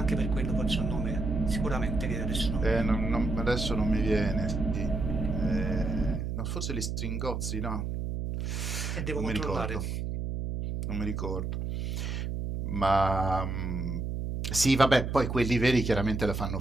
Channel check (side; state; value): right; noise; hum, 3 dB below the sound